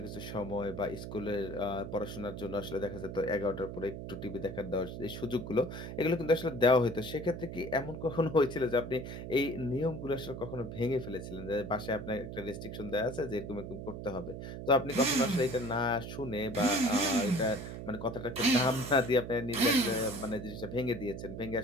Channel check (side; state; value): right; noise; hum, 8 dB below the sound